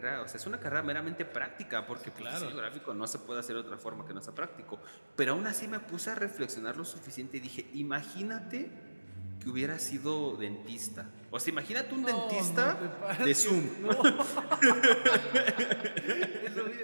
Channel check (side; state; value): both; inverted; correlation -1.00